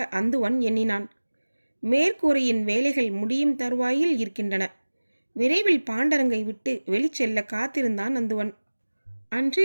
அந்துவன் எண்ணினான். மேற்கூரையின் வேலைகள் முடியும் தருவாயில் இருக்கின்றன. விரைவில் பாண்டரங்கை விட்டு வெளிச்செல்ல காத்திருந்தான் அந்துவன்.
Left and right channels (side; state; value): both; inverted; correlation -1.00